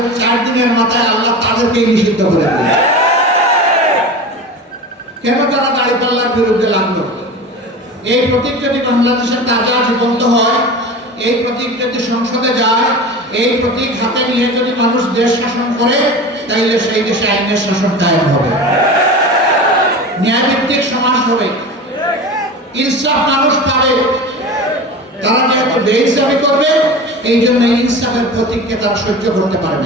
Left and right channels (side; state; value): both; normal; correlation 0.31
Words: 4 দিনের মাথায় আল্লাহ তাদেরকেই নিষিদ্ধ করে দিল। কেন তারা দাড়িপাল্লার বিরুদ্ধে লাগলো? এই প্রতীক যদি বাংলাদেশের তাজা জীবন্ত হয়, এই প্রতীক যদি সংসদে যায়, এই প্রতীক হাতে নিয়ে যদি মানুষ দেশ শাসন করে, তাইলে সেই দেশে আইনের শাসন কায়েম হবে, ন্যায়ভিত্তিক সমাজ হবে, ইনসাফ মানুষ পাবে। তারা যেহেতু বেইনসাফি করবে, এই জন্য ইনসাফের প্রতীককে তারা সহ্য করতে